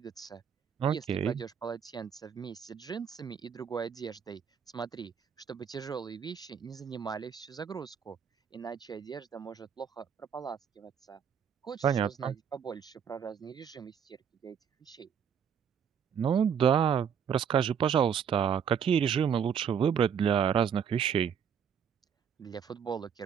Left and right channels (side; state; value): left; quieter; 7.7 dB